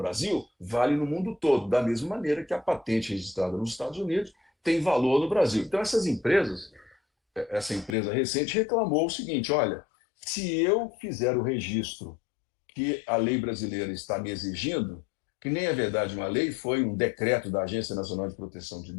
vale no mundo todo, da mesma maneira que a patente registrada nos Estados Unidos tem valor no Brasil. Então, essas empresas, essa empresa recente reclamou o seguinte: olha, se eu fizer o registro que a lei brasileira está me exigindo, que nem é verdade uma lei, foi um decreto da Agência Nacional de Proteção de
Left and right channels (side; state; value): right; drops out; at 8.0 s